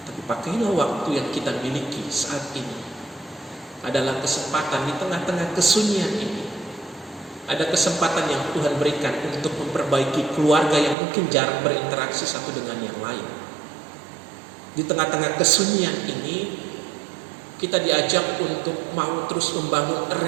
tapi pakailah waktu yang kita miliki saat ini adalah kesempatan di tengah-tengah kesunyian ini. Ada kesempatan yang Tuhan berikan untuk memperbaiki keluarga yang mungkin jarang berinteraksi satu dengan yang lain. Di tengah-tengah kesunyian ini, kita diajak untuk mau terus membangun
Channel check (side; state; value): left; drops out; at 11.0 s